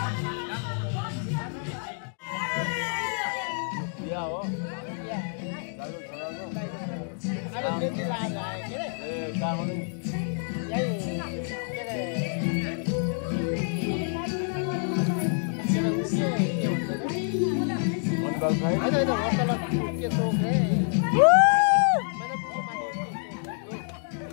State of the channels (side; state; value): right; silent; 60 dB below the other